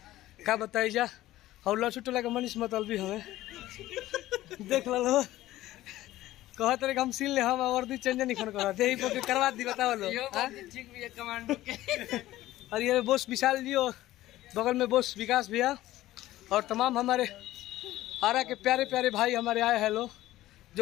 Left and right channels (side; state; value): right; quieter; 15.5 dB